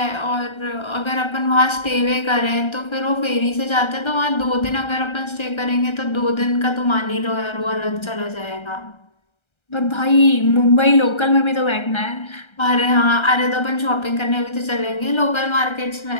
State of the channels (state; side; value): late; right; 1.3 ms